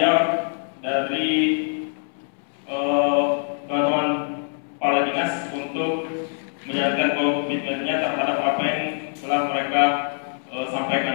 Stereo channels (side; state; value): right; silent; 63 dB below the other